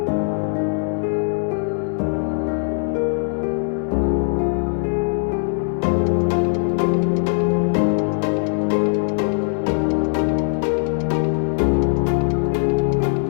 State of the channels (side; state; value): right; silent; digital silence